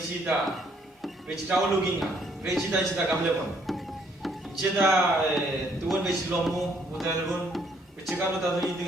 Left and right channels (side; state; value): both; normal; correlation 0.67